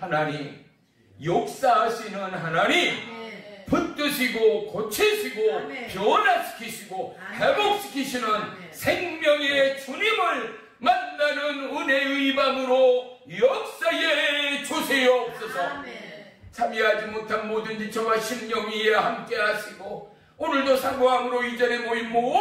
역사하시는 하나님, 붙드시고 고치시고 변화시키시고 회복시키시는 생명의 주님을 만나는 은혜의 밤으로 역사에 주시옵소서. 참여하지 못한 모든 지체와 심령 위에 함께 하시고, 오늘도 사모함으로 이전에 모인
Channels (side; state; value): both; identical; correlation 1.00